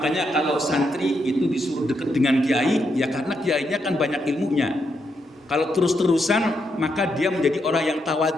kalau santri itu disuruh dekat dengan kiai, ya karena kiainya kan banyak ilmunya. Kalau terus-terusan, maka dia menjadi orang yang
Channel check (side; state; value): both; normal; correlation 0.80